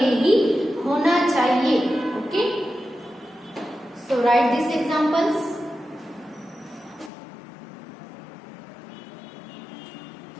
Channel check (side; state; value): right; drops out; at 7.1 s